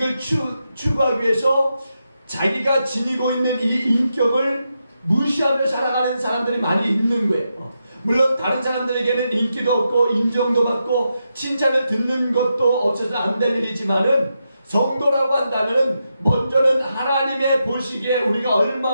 추구하기 위해서 자기가 지니고 있는 이 인격을 무시하며 살아가는 사람들이 많이 있는 거예요. 물론 다른 사람들에게는 인기도 없고 인정도 받고 칭찬을 듣는 것도 없어서 안 될 일이지만은 성도라고 한다면 먼저는 하나님의 보시기에 우리가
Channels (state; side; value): inverted; both; correlation -0.86